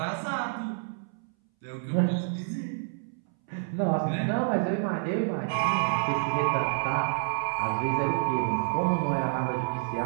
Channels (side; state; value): left; silent; 59 dB below the other